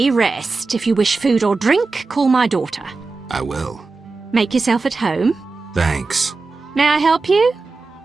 rest. If you wish food or drink, call my daughter. I will. Make yourself at home. Thanks. May I help you?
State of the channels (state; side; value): quieter; left; 3.9 dB